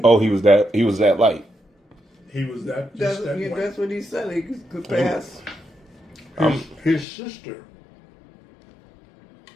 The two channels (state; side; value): drops out; right; at 7.1 s